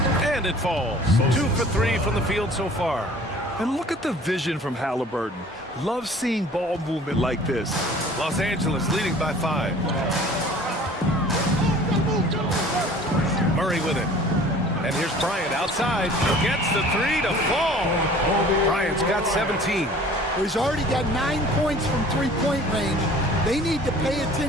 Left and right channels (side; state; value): both; normal; correlation 0.48